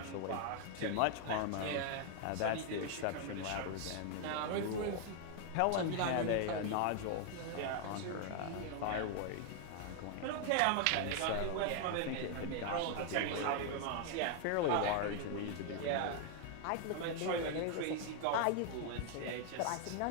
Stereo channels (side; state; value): both; different; correlation 0.00